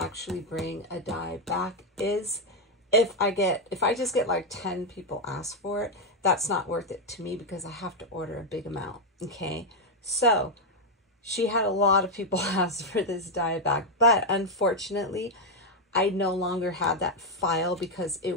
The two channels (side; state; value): both; normal; correlation 0.02